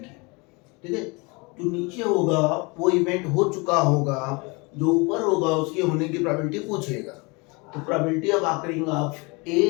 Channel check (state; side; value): quieter; right; 28.1 dB